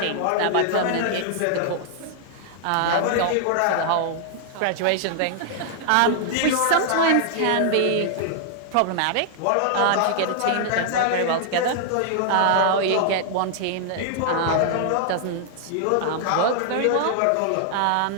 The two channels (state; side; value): different; both; correlation -0.01